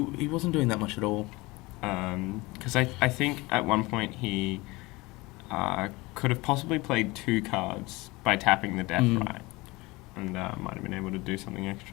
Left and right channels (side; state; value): right; quieter; 22.7 dB